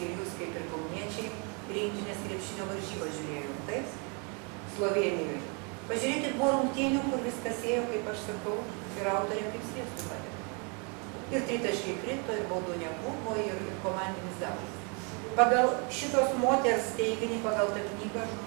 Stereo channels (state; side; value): quieter; left; 35.1 dB